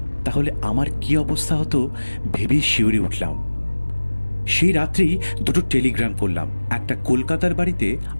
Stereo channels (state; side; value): inverted; both; correlation -1.00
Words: তাহলে আমার কি অবস্থা হতো ভেবেই শিউরে উঠলাম। সেই রাত্রেই 2টো টেলিগ্রাম করলাম, একটা কলকাতার বাড়িতে